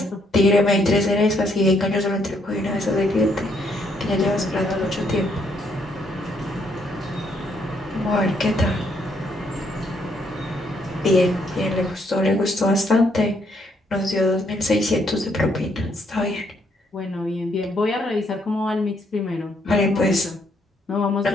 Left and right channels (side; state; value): both; normal; correlation 0.72